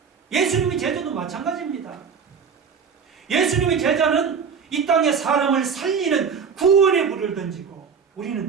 예수님의 제자도 마찬가지입니다. 예수님의 제자는 이 땅에 사람을 살리는 구원의 불을 던지고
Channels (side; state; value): left; quieter; 6.3 dB